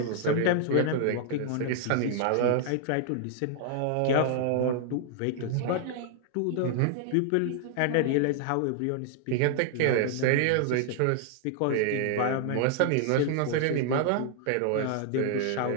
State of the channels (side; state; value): both; different; correlation 0.00